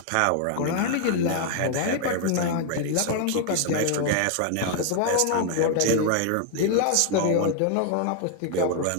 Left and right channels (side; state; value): both; different; correlation 0.00